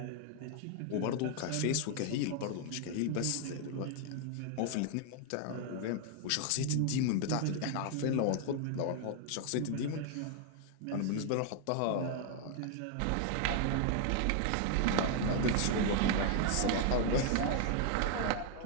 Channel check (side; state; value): both; different; correlation 0.00